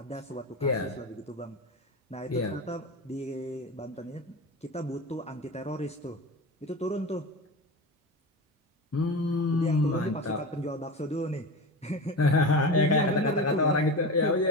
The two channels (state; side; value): normal; both; correlation 0.26